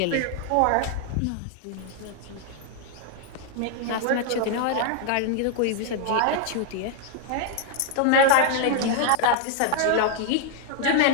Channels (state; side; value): different; both; correlation 0.00